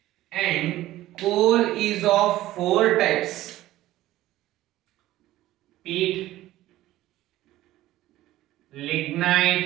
And coal is of four types: peat,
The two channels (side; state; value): left; quieter; 15.4 dB